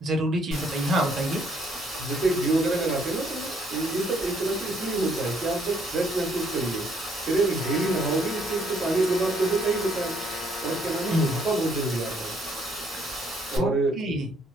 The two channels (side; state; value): both; normal; correlation 0.67